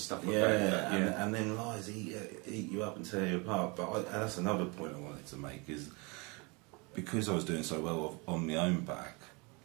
like that. And then lies eat you up and tear you apart. But that's another point I wanted to make, is because I was doing so well on my own back,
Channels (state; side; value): quieter; left; 29.1 dB